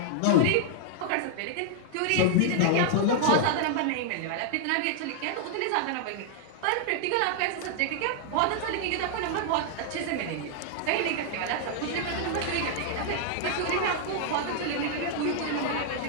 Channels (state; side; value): different; both; correlation -0.01